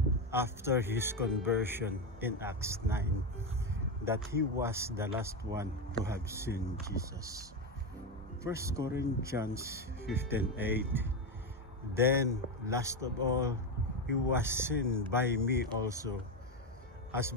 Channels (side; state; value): both; normal; correlation 0.11